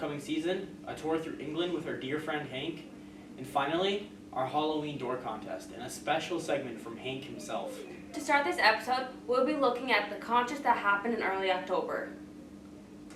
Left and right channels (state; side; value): identical; both; correlation 1.00